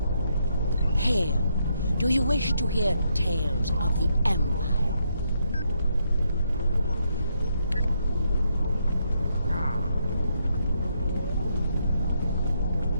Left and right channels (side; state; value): both; inverted; correlation -0.77